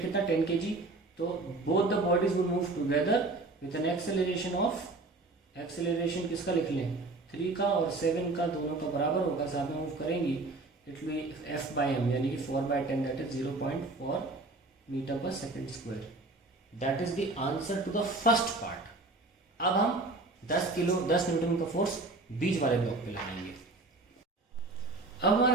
कितना? 10 kg। तो both the bodies will move together with an acceleration किसका लिख लें? 3 का और 7 का, दोनों का बराबर होगा, साथ में मूव करेंगी। इट विल बी F/m, यानी कि 4/10, that is 0.4 metre per second square. That is the answer to the first part. अब हम 10 न्यूटन का फोर्स बीच वाले ब्लॉक पे लगाएंगे। अब हमारा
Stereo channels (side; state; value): left; quieter; 3.2 dB